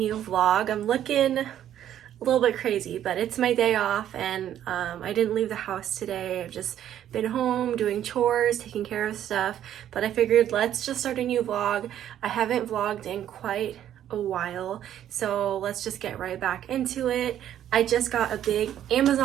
vlog. I'm looking a little bit crazy, but it's my day off and I didn't leave the house today. I've just been home doing chores, taking care of stuff, but I figured let's just start a new vlog. I haven't vlogged in quite a while, so let's just get right back into it. I just got a big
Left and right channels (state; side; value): quieter; left; 11.0 dB